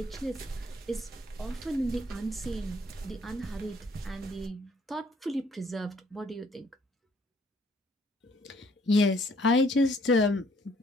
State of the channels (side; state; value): both; normal; correlation 0.63